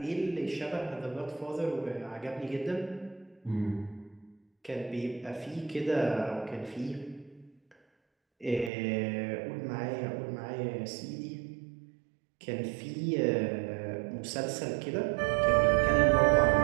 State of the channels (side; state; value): left; drops out; at 8.7 s